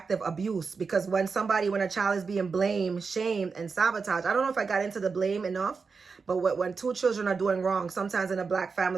abuse, because when a child is being blamed, shamed, and sabotaged, I don't know if I got into the blame enough, but when two children are doing wrong, sometimes in a black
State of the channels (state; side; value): quieter; left; 5.0 dB